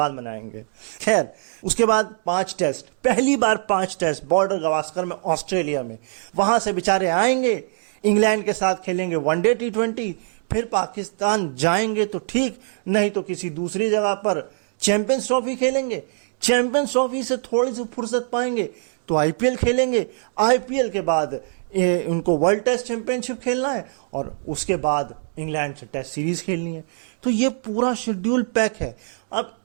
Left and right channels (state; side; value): silent; left; digital silence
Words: मनाएंगे। खैर, उसके बाद 5 टेस्ट, पहली बार 5 टेस्ट बॉर्डर गवास्कर में, ऑस्ट्रेलिया में। वहां से बेचारे आएंगे, इंग्लैंड के सात खेलेंगे वनडे T20, फिर पाकिस्तान जाएंगे तो ठीक, नहीं तो किसी दूसरी जगह पर चैंपियंस ट्रॉफी खेलेंगे। चैंपियंस ट्रॉफी से थोड़ी सी फुर्सत पाएंगे तो IPL खेलेंगे। IPL के बाद उनको वर्ल्ड टेस्ट चैंपियनशिप खेलना है और उसके बाद इंग्लैंड से टेस्ट सीरीज खेलनी है। तो ये पूरा शेड्यूल पैक है। अब